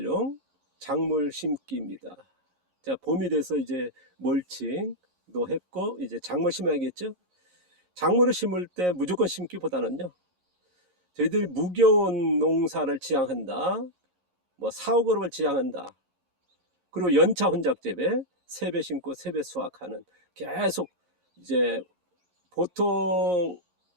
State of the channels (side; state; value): left; late; 11 ms